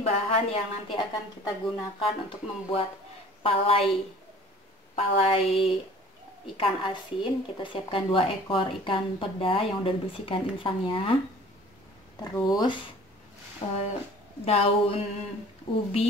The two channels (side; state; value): both; normal; correlation 0.48